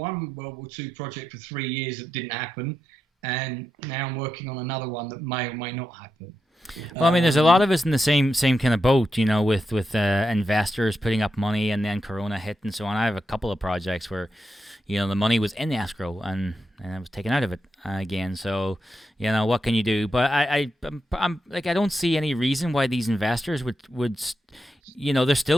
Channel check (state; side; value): normal; both; correlation 0.86